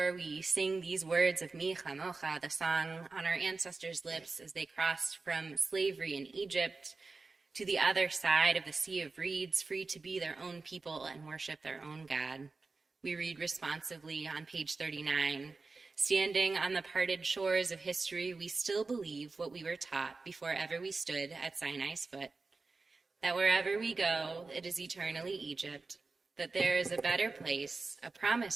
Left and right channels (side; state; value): left; quieter; 3.9 dB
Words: we sing these words of Mi Chamocha, the song on our ancestors' lips as they crossed from slavery in Egypt to the other side of the Sea of Reeds, free to be their own people and worship their own God, we read responsively on page 39, Standing on the parted shores of history, we still believe what we were taught before ever we stood at Sinai's foot, that wherever we go, it is eternally Egypt, that there is a better place, a